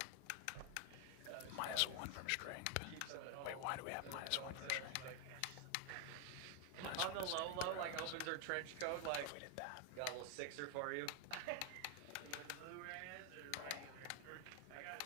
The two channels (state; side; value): different; both; correlation 0.00